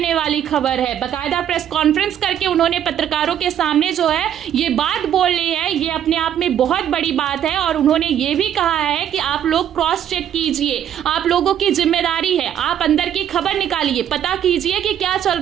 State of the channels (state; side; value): quieter; left; 10.1 dB